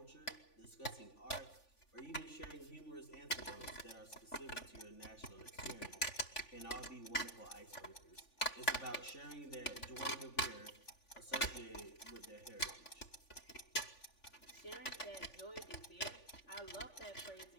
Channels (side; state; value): right; late; 3.5 ms